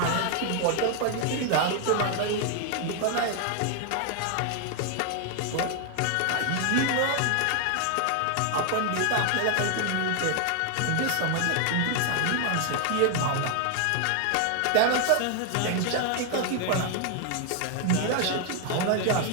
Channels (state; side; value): different; both; correlation 0.00